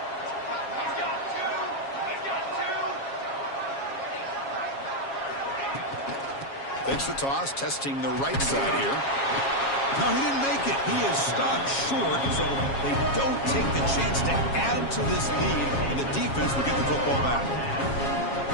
Takes the toss, testing the right side here. No, he didn't make it. He is stopped short, so they don't take the chance to add to this lead, and the defense will get the football back.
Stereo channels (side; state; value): right; late; 7.3 ms